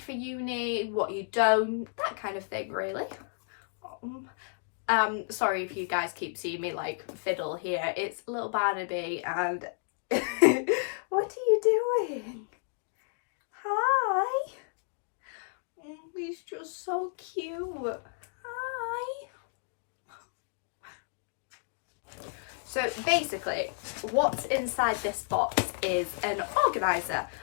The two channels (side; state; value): right; silent; digital silence